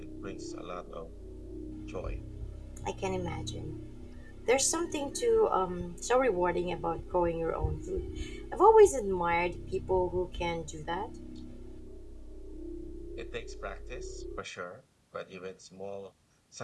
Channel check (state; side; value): identical; both; correlation 1.00